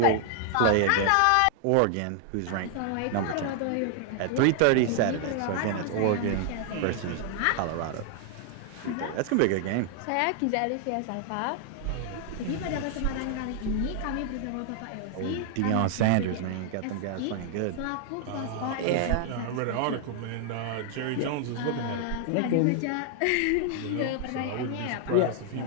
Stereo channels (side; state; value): both; different; correlation 0.00